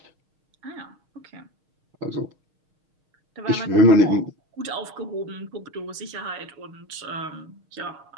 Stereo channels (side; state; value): left; late; 6.5 ms